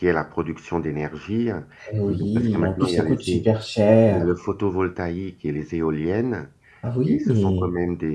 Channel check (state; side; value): identical; both; correlation 1.00